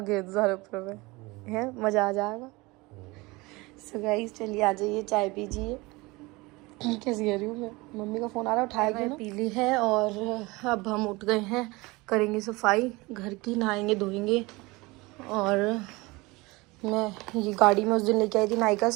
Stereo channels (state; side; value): quieter; left; 23.2 dB